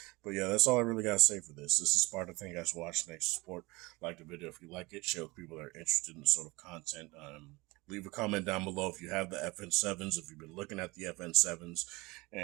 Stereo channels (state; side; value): quieter; left; 23.4 dB